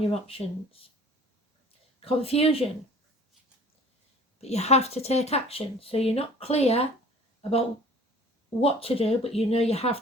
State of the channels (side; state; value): both; normal; correlation 0.48